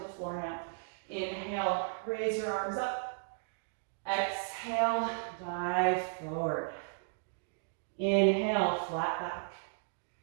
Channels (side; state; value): left; silent; digital silence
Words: the floor now. Inhale, raise your arms up. Exhale, dive forward. Inhale, flat back.